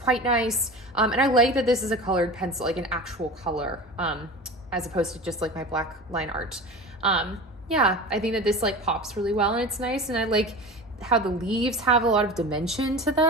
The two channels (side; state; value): both; normal; correlation 0.32